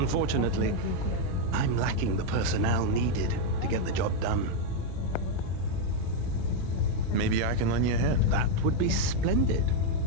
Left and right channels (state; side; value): different; both; correlation 0.01